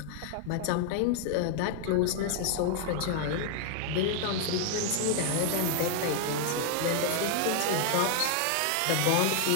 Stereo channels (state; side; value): different; both; correlation 0.00